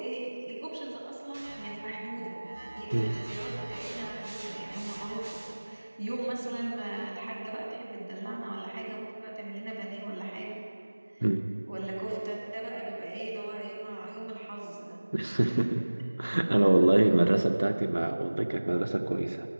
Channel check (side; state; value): both; inverted; correlation -1.00